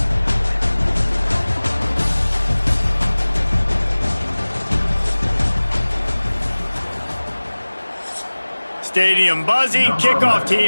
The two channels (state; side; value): inverted; both; correlation -1.00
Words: Stadium buzzing, kickoff